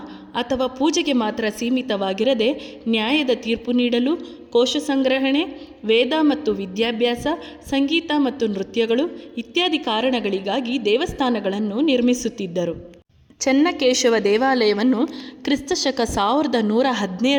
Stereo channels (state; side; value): identical; both; correlation 1.00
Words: ಅಥವಾ ಪೂಜೆಗೆ ಮಾತ್ರ ಸೀಮಿತವಾಗಿರದೆ ನ್ಯಾಯದ ತೀರ್ಪು ನೀಡಲು, ಕೋಶ ಸಂಗ್ರಹಣೆ, ವೇದ ಮತ್ತು ವಿದ್ಯಾಭ್ಯಾಸ, ಸಂಗೀತ ಮತ್ತು ನೃತ್ಯಗಳು ಇತ್ಯಾದಿ ಕಾರಣಗಳಿಗಾಗಿ ದೇವಸ್ಥಾನಗಳನ್ನು ನಿರ್ಮಿಸುತ್ತಿದ್ದರು. ಚೆನ್ನಕೇಶವ ದೇವಾಲಯವನ್ನು ಕ್ರಿಸ್ತಶಕ